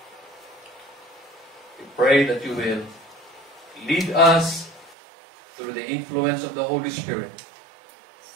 We pray that you will lead us through the influence of the Holy Spirit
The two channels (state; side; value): drops out; left; at 5.0 s